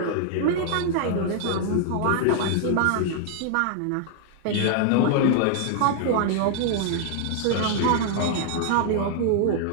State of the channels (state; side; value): different; both; correlation 0.00